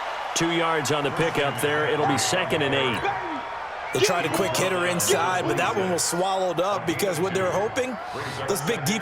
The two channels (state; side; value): identical; both; correlation 1.00